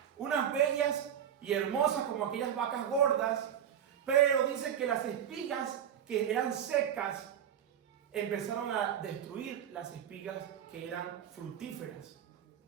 unas bellas y hermosas como aquellas vacas gordas, pero dice que las espigas que eran secas empezaron a destruir las espigas que eran fructíferas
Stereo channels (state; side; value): quieter; left; 9.3 dB